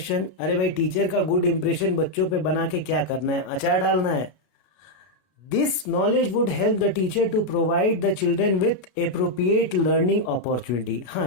अरे भाई, टीचर का गुड इंप्रेशन बच्चों पे बना के क्या करना है? अचार डालना है। This knowledge would help the teacher to provide the children with appropriate learning opportunity. हाँ,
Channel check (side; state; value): right; late; 33 ms